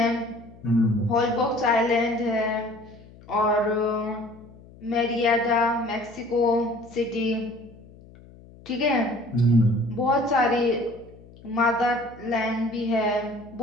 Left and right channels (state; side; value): noise; left; hum, 22 dB below the sound